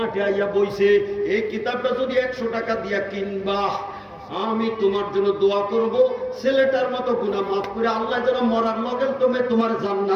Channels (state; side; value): identical; both; correlation 1.00